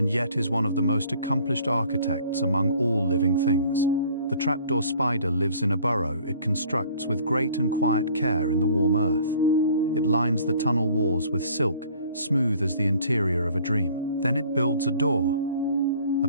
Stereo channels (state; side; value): inverted; both; correlation -0.54